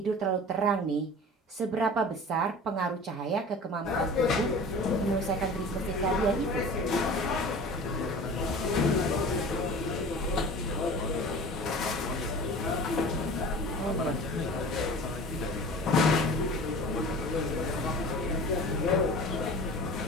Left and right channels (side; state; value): both; normal; correlation 0.39